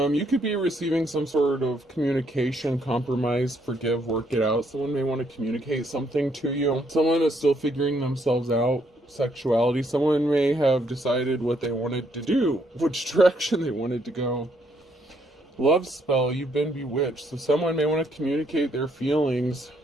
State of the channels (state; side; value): normal; both; correlation 0.71